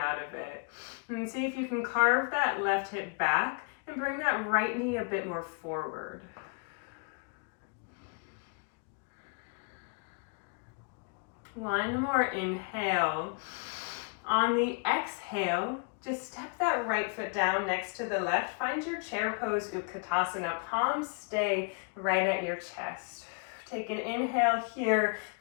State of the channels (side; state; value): right; quieter; 35.8 dB